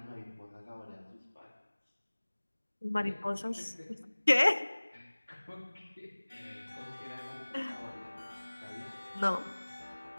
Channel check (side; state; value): both; inverted; correlation -1.00